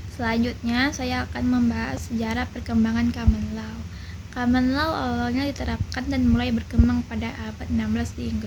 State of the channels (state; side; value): identical; both; correlation 1.00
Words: Selanjutnya, saya akan membahas sejarah perkembangan Common Law. Common Law awalnya diterapkan dan mulai berkembang pada abad 16 di